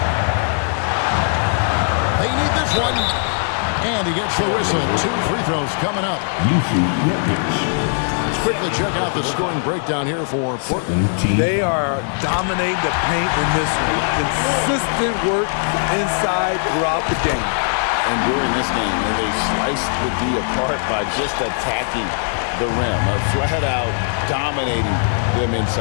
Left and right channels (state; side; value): silent; right; digital silence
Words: They need this one. And he gets the whistle. 2 free throws coming up. Let's quickly check out the scoring breakdown here for Portland. They are dominating the paint in this one. Consistent work inside throughout the game. And during this game, they sliced the D apart by just attacking the rim, flat out dominating them